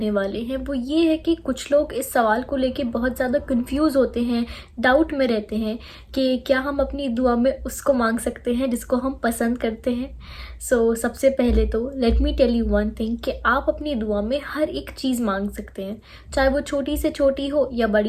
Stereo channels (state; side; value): identical; both; correlation 1.00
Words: वाले हैं वो ये है कि कुछ लोग इस सवाल को लेके बहुत ज़्यादा कंफ्यूज होते हैं, डाउट में रहते हैं कि क्या हम अपनी दुआ में उसको मांग सकते हैं जिसको हम पसंद करते हैं। सबसे पहले तो let me tell you one thing कि आप अपनी दुआ में हर एक चीज़ मांग सकते हैं, चाहे वो छोटी से छोटी हो या